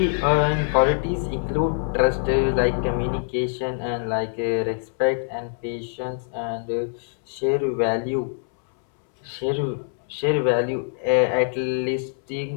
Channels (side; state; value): right; silent; 63 dB below the other